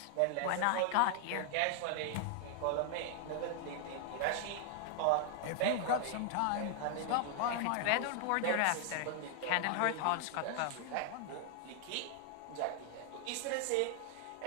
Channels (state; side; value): different; both; correlation 0.00